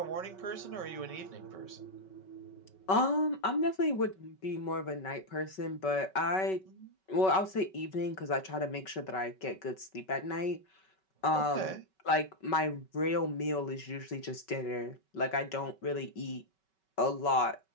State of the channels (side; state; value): right; late; 5.3 ms